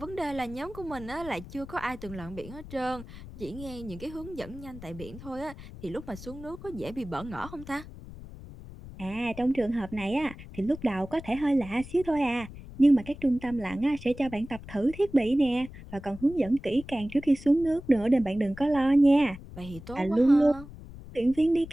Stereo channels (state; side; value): noise; left; rumble, 15 dB below the sound